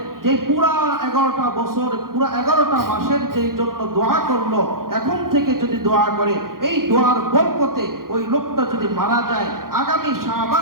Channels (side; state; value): left; late; 0.92 ms